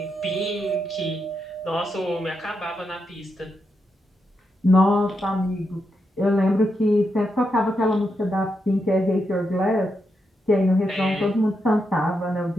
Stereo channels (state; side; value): normal; both; correlation 0.84